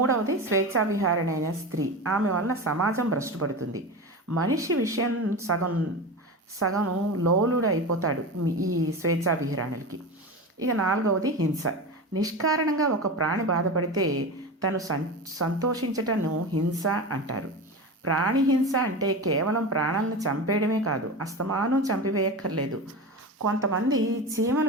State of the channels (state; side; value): normal; both; correlation 0.25